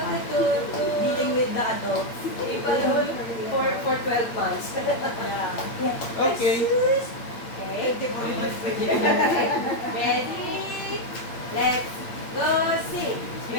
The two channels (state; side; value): late; right; 8.7 ms